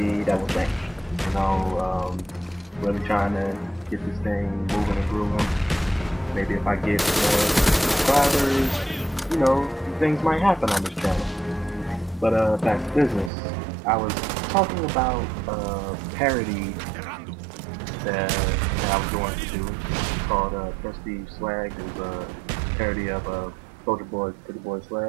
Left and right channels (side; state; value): left; drops out; at 13.3 s